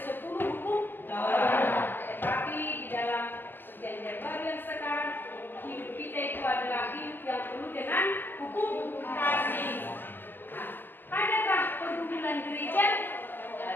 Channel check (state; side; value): late; right; 0.092 ms